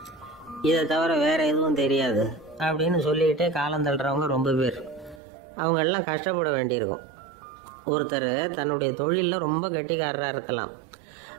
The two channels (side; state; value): left; drops out; at 5.2 s